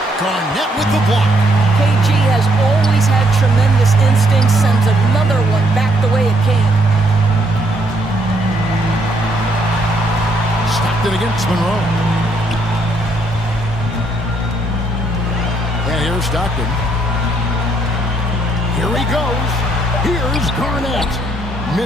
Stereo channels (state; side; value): normal; both; correlation 0.71